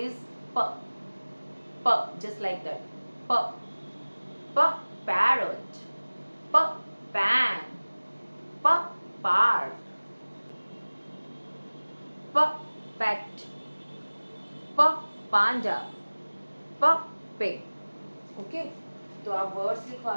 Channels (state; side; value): inverted; both; correlation -1.00